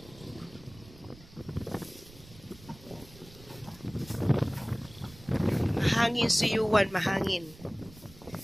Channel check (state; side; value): noise; right; rumble, 21 dB below the sound